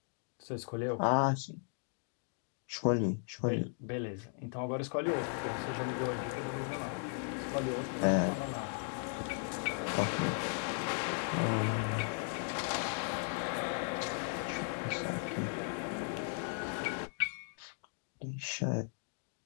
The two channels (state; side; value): silent; right; 53 dB below the other